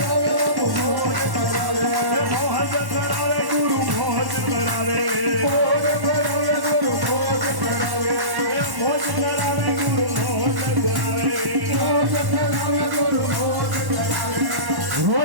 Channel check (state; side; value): late; left; 1.1 ms